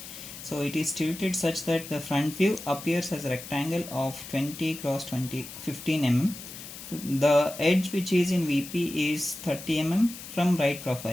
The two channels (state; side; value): noise; left; hiss, 13 dB below the sound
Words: So it is tilted such that the front view appears as a rectangle of 20 cross 15 mm. The edge which is in VP is 30 mm from right